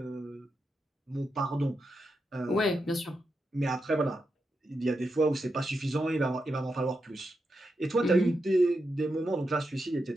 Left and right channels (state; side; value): normal; both; correlation 0.86